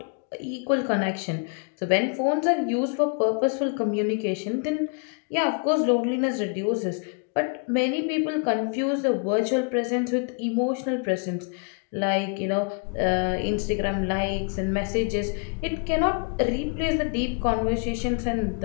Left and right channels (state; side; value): quieter; right; 37.2 dB